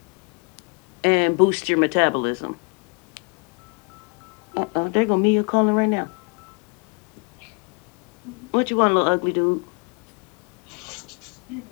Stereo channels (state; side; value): quieter; right; 34.5 dB